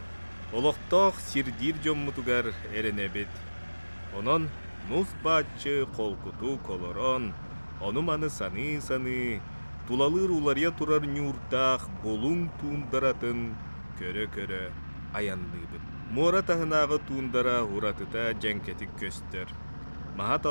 Олықтақ сирдир жоммутугар эренебет. Онон нус бачы қолкуту колорон, онуманы саны, тулалыр улария турар нюртақ болун туундаратын көрө-көрө аяндыбыт. Мора тахынағы туындара уратыта жәнкетік көстер. Махат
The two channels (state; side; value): inverted; both; correlation -1.00